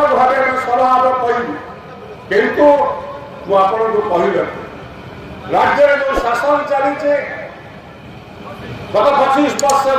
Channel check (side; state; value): both; identical; correlation 1.00